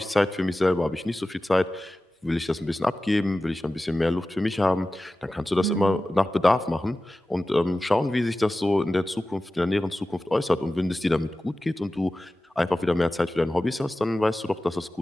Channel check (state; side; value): normal; both; correlation 0.95